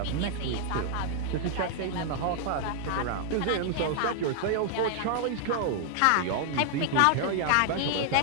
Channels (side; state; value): both; different; correlation 0.00